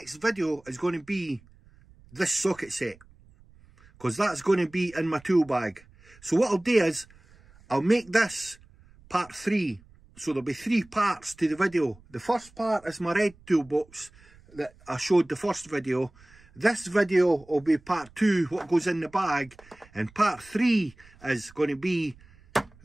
video is going to be this socket set. Because that's going to be in my tool bag. So what I'll do is, I'll make this part 3. So there'll be 3 parts to the video. The first part is my red toolbox that I showed the first video. This video will be part 2, what goes in the bag. And part 3 is going to be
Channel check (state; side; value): noise; right; rumble, 27 dB below the sound